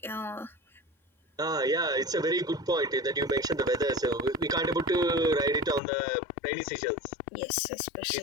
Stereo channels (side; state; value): right; drops out; at 5.8 s